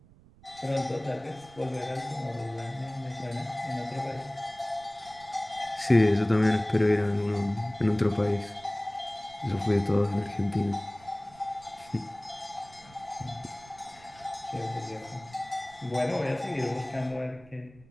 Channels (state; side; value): noise; right; rumble, 25 dB below the sound